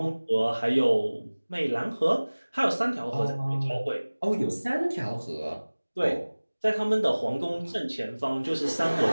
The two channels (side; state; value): both; inverted; correlation -1.00